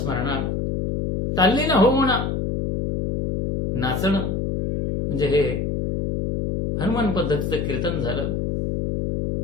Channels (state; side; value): noise; left; hum, 1 dB below the sound